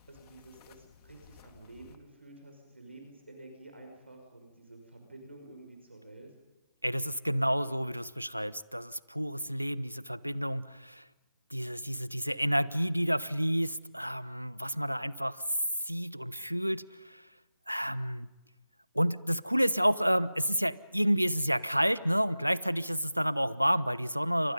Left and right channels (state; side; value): inverted; both; correlation -0.96